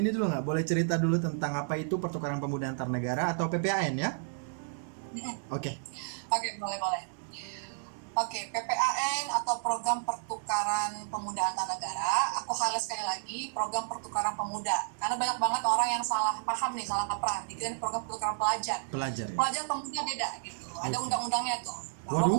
dulu nggak? Boleh cerita dulu tentang apa itu pertukaran pemuda antar negara atau PPAN ya? Oke. Oke, boleh. Oke, PPAN atau Program Pertukaran Pemuda Antar Negara. Aku highlight sekali lagi program pertukaran pemuda. Karena banyak banget orang yang salah paham nih, salah kaprah. Dikira program pertukaran pelajar. Pelajar ya. Pelajar pemuda beda gitu. Ada Oke. undang-undangnya tuh. Bahwa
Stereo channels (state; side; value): silent; left; digital silence